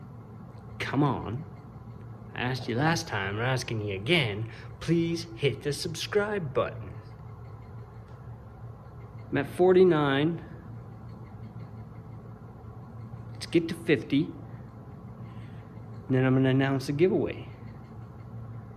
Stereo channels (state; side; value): identical; both; correlation 1.00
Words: Come on. I asked you last time, I'm asking you again. Please hit the subscribe button. I'm at 49. Let's get to 50. And then I'm gonna announce a giveaway.